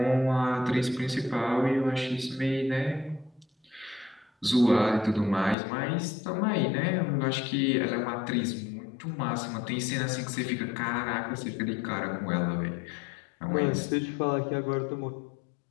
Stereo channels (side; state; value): right; drops out; at 5.6 s